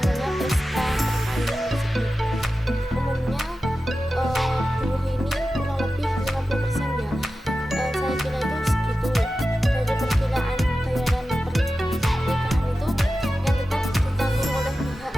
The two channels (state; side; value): normal; both; correlation 0.93